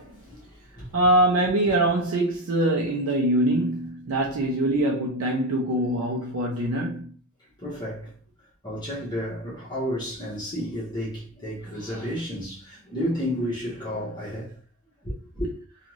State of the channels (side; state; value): both; normal; correlation 0.16